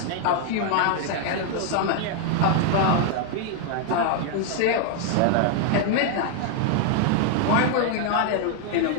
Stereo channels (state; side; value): different; both; correlation 0.00